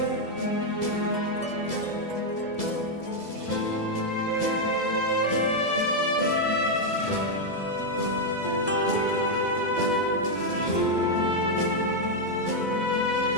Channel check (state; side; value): late; right; 2.0 ms